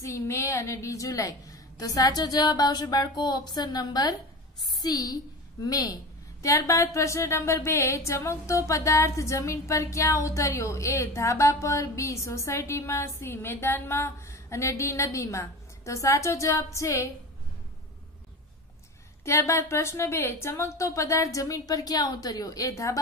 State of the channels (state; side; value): normal; both; correlation 0.29